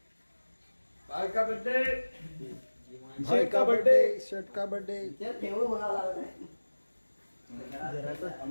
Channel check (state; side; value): inverted; both; correlation -1.00